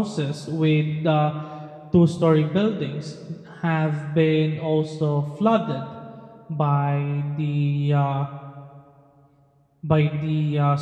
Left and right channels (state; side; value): identical; both; correlation 1.00